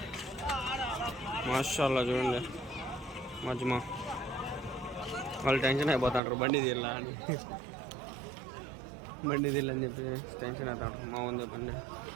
మాషాల్లా చూడండి మజ్మా. వాళ్ళు టెన్షన్ అయిపోతాంటారు బండి తీరలా అని, బండి తీరని చెప్పి టెన్షన్ అవుతాంటారు. మావన్ బండి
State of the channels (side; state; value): left; drops out; at 6.2 s